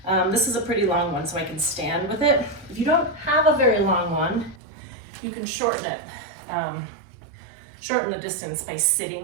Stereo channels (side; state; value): left; drops out; at 4.6 s